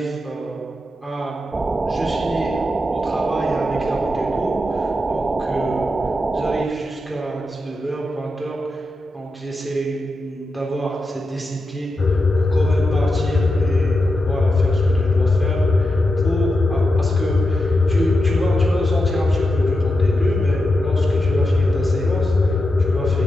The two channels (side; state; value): both; normal; correlation 0.88